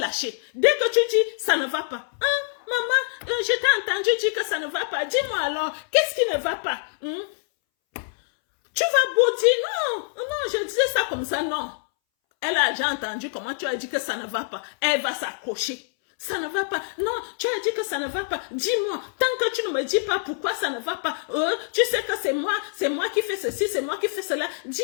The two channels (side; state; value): right; silent; 62 dB below the other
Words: Dès que tu dis, ça ne va pas. Hein, maman, je t'ai entendu dire que ça ne va pas. Dis-moi alors, qu'est-ce qui ne va pas? Tu vas beau dire, non, je disais ça comme ça, non. Elle a déjà entendu comment tu as dit que ça ne va pas. Elle va s'accrocher. Ça ne va pas. Non, tu as dit que ça ne va pas. Dis-moi, tant que tu ne me dis pas pourquoi ça ne va pas, tu sais que c'est moi qui fais ceci, c'est moi qui fais cela.